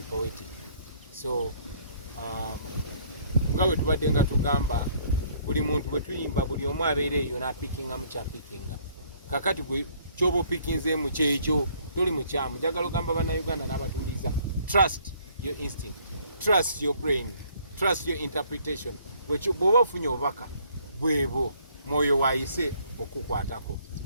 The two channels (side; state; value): both; inverted; correlation -0.62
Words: poetic so nga bwe tubadde nga tugamba buli muntu bwe tuyimba buli omu abeera eyo n'apikinga mu kyapikinga kakati gwe kyoba opikinzeemu kyekyo toli mukyamu njagala ogamba bannayuganda n'abatuliza trust your instinct, trust your brain, trust your interpretation. Bw'oba ofunye obubaka bwebo mwoyo waayise okukwatako